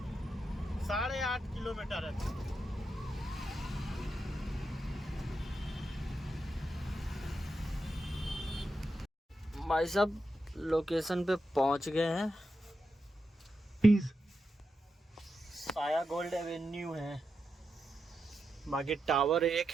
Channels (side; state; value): both; normal; correlation 0.87